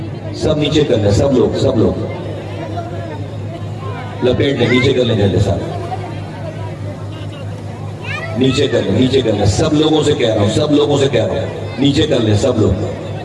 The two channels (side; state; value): both; identical; correlation 1.00